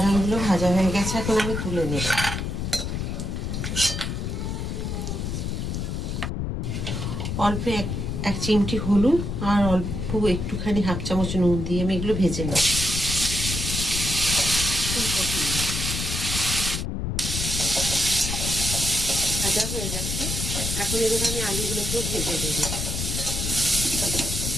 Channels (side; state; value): left; noise; rumble, 3 dB below the sound